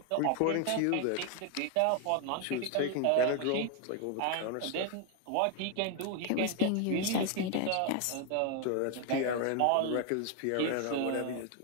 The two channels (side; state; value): both; different; correlation 0.01